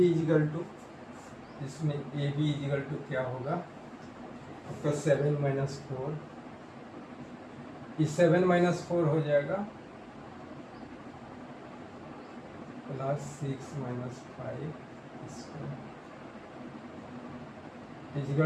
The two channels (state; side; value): identical; both; correlation 1.00